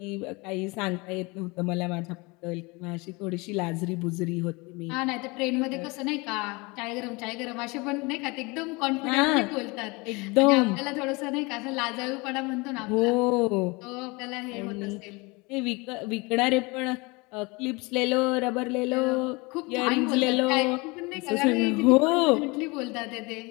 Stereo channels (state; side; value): quieter; right; 26.1 dB